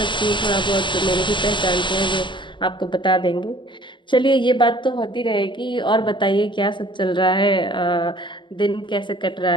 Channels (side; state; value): right; late; 0.23 ms